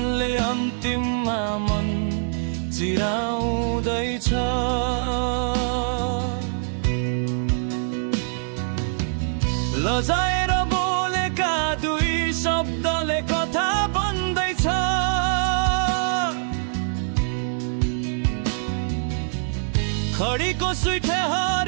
अन्तिममा मन चिराउँदैछ। लजाएर बोलेका दुई शब्दले कथा बन्दैछ, खडीको सुइठे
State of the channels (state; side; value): silent; left; digital silence